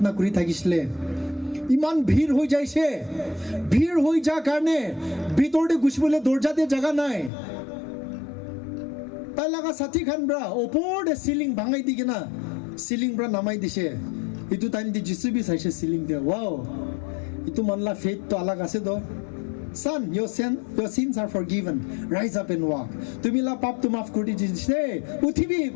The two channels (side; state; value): right; drops out; at 7.3 s